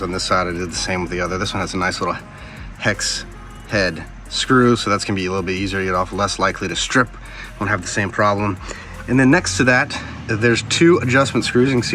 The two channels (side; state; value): both; identical; correlation 1.00